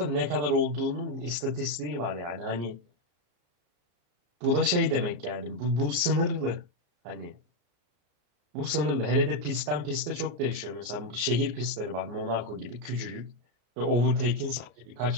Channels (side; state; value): left; late; 34 ms